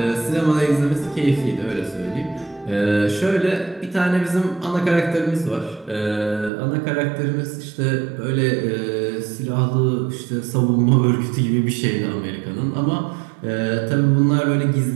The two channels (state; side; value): drops out; left; at 6.5 s